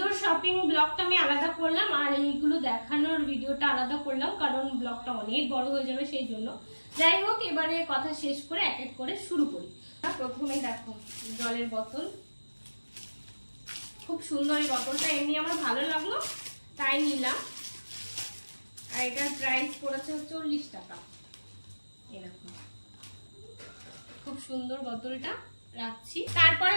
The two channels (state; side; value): inverted; both; correlation -1.00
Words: ব্লগটা আমি আলাদা করলাম, আর এইগুলো দেখানোর ভিডিওটা আলাদা করলাম, কারণ ব্লগটা অনেক বড় হয়ে যাবে সেই জন্য। যাই হোক, এবারে কথা শেষ করে এক এক করে শুরু করি। প্রথমেই দেখো জলের বোতল, খুব সুন্দর এই বোতলটা, এমনি আমার ভালো লাগলো তাই নিলাম। আর এটার প্রাইস পড়েছে 40 টাকা। এরকম খুব সুন্দর বোতলটা রাখছি। তারপরে